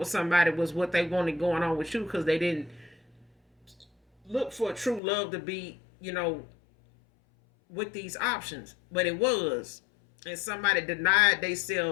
somebody was what they wanted going on with you, because they didn't look for true love to be, with these options. But it was. And somebody denied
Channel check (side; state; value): right; drops out; at 5.0 s